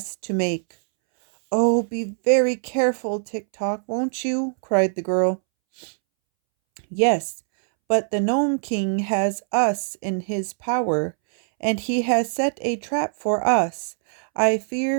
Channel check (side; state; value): left; silent; 64 dB below the other